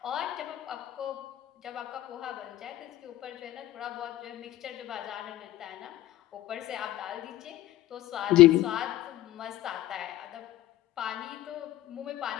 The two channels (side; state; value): right; quieter; 15.0 dB